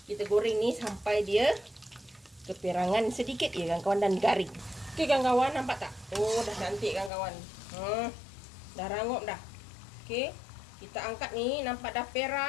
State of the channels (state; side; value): drops out; right; at 7.1 s